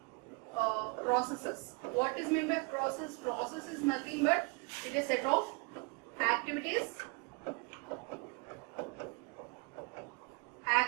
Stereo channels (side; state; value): left; quieter; 32.8 dB